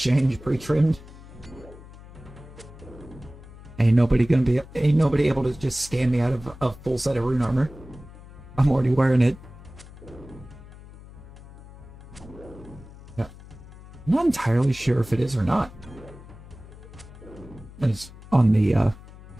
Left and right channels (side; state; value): left; noise; hum, 18 dB below the sound